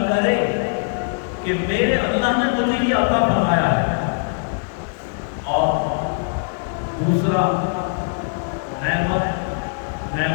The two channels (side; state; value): right; silent; digital silence